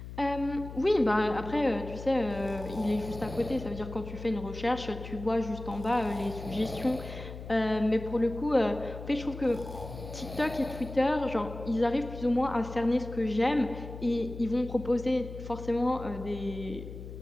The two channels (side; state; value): left; noise; hum, 11 dB below the sound